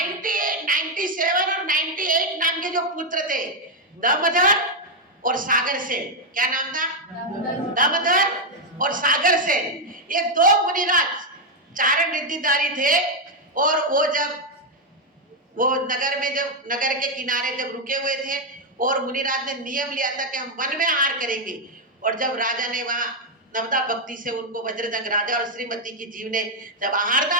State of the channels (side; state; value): both; normal; correlation 0.01